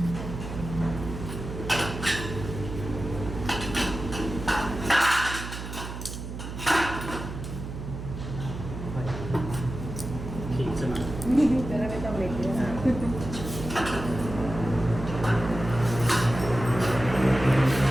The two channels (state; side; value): noise; right; hum, 8 dB below the sound